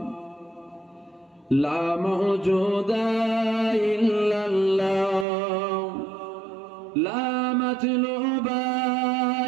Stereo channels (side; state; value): left; drops out; at 5.2 s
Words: لا موجود إلا الله لا مطلوب